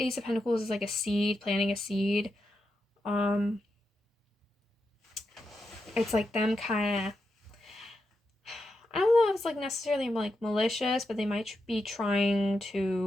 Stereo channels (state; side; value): normal; both; correlation 0.86